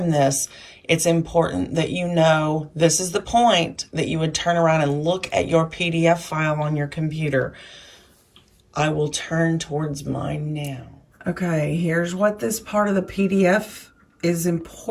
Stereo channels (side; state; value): both; identical; correlation 1.00